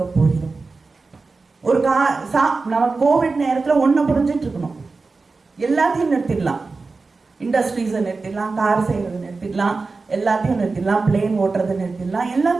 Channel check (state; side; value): quieter; left; 4.0 dB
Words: போகிறோம்? ஒரு நம்ம கோவிட் நேரத்தில் ஒன்றை புரிஞ்சிட்டு இருக்கணும், எல்லாத்தையும் நிறுத்திடலாம், இண்டஸ்ட்ரீஸை நிறுத்திடலாம், கார் செய்யறது நிறுத்திடலாம், எல்லாத்தையும் நிறுத்திடலாம், பிளேன் ஓட்டுறதை நிறுத்திடலாம்,